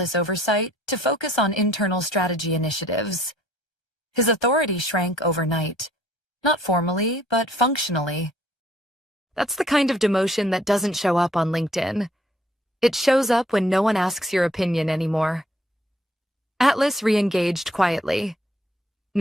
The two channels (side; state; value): both; normal; correlation 0.62